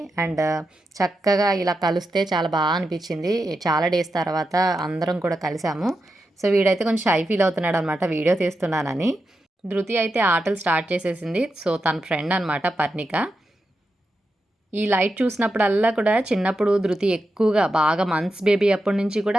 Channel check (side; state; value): both; normal; correlation 0.88